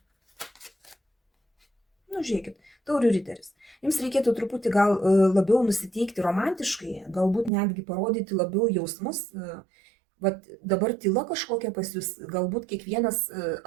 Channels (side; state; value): left; drops out; at 7.5 s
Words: Žiūrėkit, taurių riteris. Jums reikėtų truputį gal labiau nusiteikti romantiškai, galbūt netgi parodyti labiau jausmus. Dabar tyla kažkokia pas jūs, galbūt kiekvienas